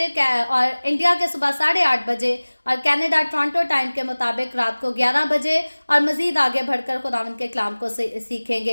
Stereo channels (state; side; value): inverted; both; correlation -1.00